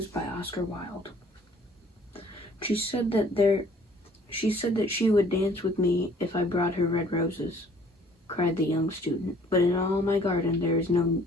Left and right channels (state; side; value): normal; both; correlation 0.56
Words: by Oscar Wilde. She said that she would dance with me if I brought her red roses, cried the young student. But in all my garden there is